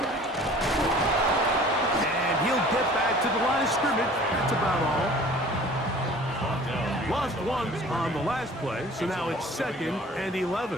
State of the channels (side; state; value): both; normal; correlation 0.47